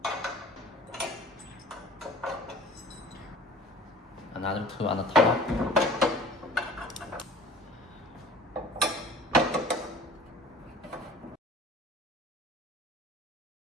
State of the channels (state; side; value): normal; both; correlation 0.45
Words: Another two on the top.